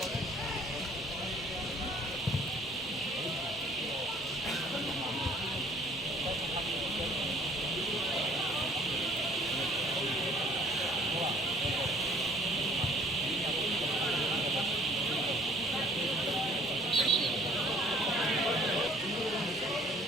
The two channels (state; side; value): normal; both; correlation 0.56